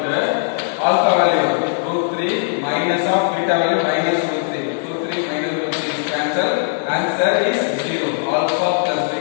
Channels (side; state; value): right; silent; 67 dB below the other